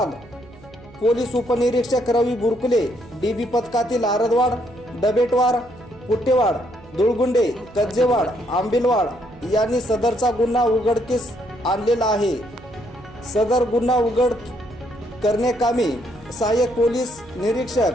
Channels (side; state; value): right; noise; hum, 22 dB below the sound